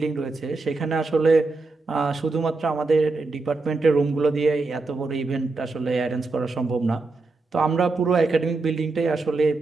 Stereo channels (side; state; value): left; quieter; 3.6 dB